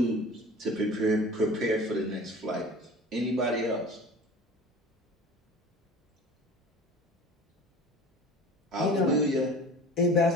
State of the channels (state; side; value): normal; both; correlation 0.40